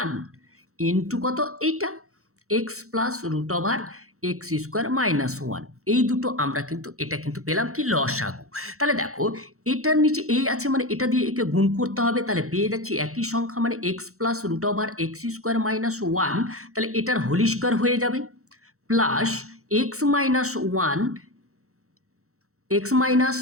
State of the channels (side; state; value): left; late; 0.64 ms